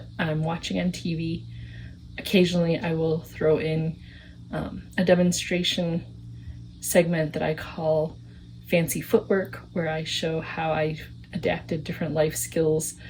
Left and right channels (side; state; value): both; identical; correlation 1.00